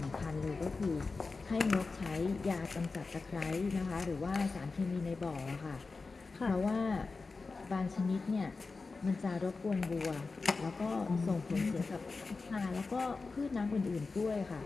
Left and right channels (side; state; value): right; quieter; 4.1 dB